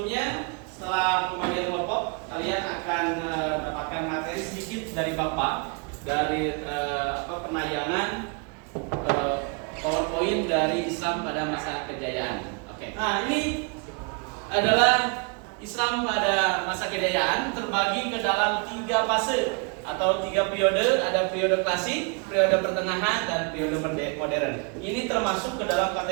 setelah pembagian kelompok, kalian akan dapatkan materi sedikit dari Bapak dari penayangan PowerPoint dari Islam pada masa kejayaan. Oke. Nah, ini adalah Islam pada masa kejayaan terbagi ke dalam 3 fase atau 3 periode. Ada periode klasik, periode pertengahan, dan periode modern. Ini termasuk ke dalam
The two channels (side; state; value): left; quieter; 34.6 dB